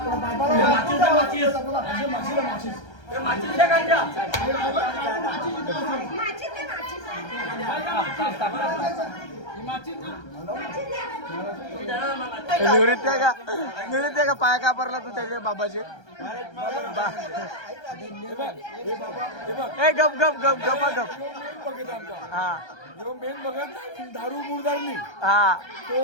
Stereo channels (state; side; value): late; right; 1.3 ms